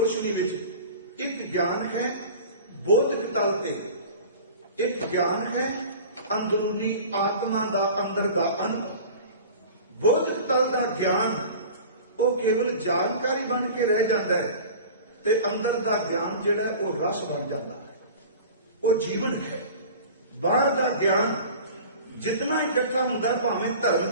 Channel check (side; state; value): both; inverted; correlation -0.39